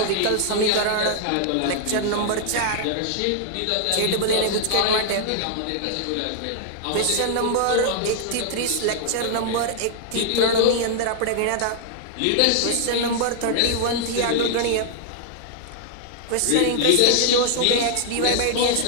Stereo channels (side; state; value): both; different; correlation -0.01